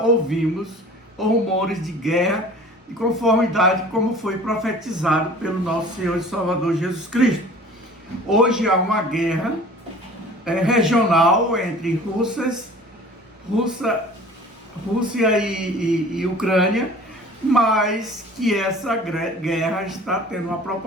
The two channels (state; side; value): normal; both; correlation 0.45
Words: rumores de guerra de conformidade como foi profetizado pelo nosso Senhor e Salvador Jesus Cristo. Hoje há uma guerra regional entre Rússia e Ucrânia, mas que essa guerra está tendo uma